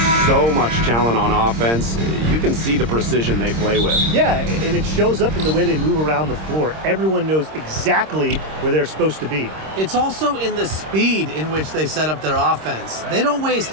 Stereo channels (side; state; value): left; late; 26 ms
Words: so much talent on offense, you can see the precision they play with. Yeah, and it shows up in the way they move around the floor. Everyone knows exactly where they're supposed to be. It's also in the speed in which they set up their offense. They don't waste